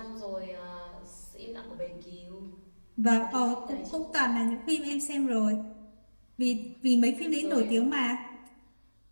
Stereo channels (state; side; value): inverted; both; correlation -1.00